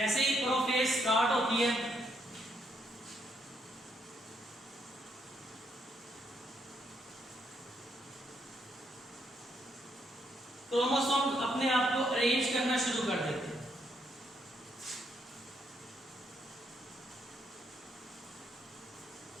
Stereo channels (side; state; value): both; normal; correlation 0.75